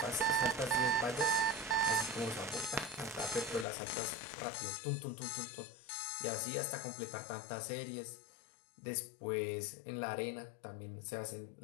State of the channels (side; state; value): right; drops out; at 3.7 s